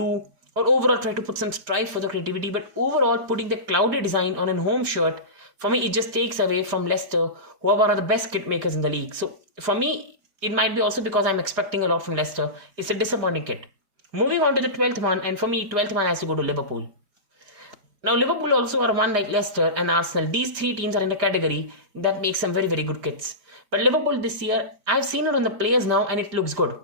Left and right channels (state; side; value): late; left; 5.2 ms